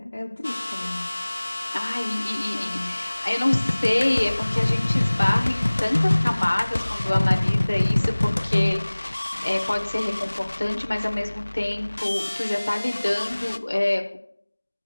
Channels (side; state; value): both; inverted; correlation -1.00